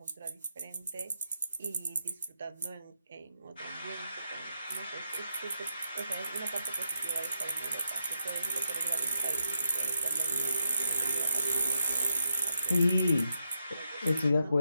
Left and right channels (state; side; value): inverted; both; correlation -0.83